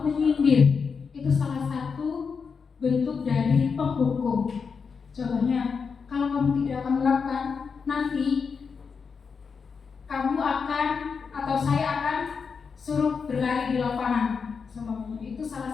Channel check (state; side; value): quieter; right; 5.6 dB